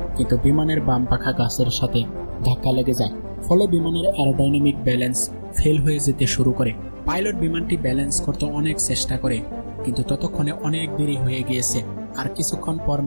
কিন্তু বিমানের বাম পাখা গাছের সাথে ধাক্কা লেগে যায়। ফলে বিমানের অ্যারোডাইনামিক ব্যালেন্স ফেল হয়ে যেতে শুরু করে। পাইলট বিমানটি ব্যালেন্স করতে অনেক চেষ্টা করে, কিন্তু ততক্ষণে অনেক দেরি হয়ে গিয়েছে। আর কিছুক্ষণ পর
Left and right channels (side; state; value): both; inverted; correlation -1.00